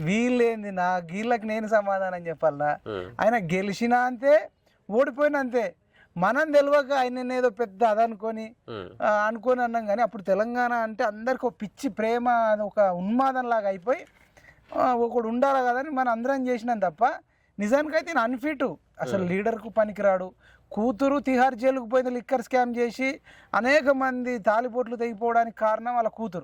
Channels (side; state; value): both; identical; correlation 1.00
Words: వీళ్ళేంది నా వీళ్ళకి నేను సమాధానం చెప్పాలా? ఆయన గెలిచినా అంతే, ఓడిపోయినా అంతే. మనం తెలియక ఆయన ఏదో పెద్ద అదనుకొని అన్నాం. కానీ అప్పుడు తెలంగాణ అంటే అందరికి ఒక పిచ్చి ప్రేమ, ఒక ఉన్మాదం లాగా అయిపోయి ఒకడు ఉండాలి కదని మనం అందరం చేసినాం తప్ప నిజానికైతే నేను అన్ఫిట్, అసలు లీడర్కు పనికిరాడు. కూతురు తిహార్ జైలుకు పోయింది లిక్కర్ స్కామ్ చేసి, అనేక మంది తాలిపోట్లు తెగిపోవడానికి కారణం వాళ్ళ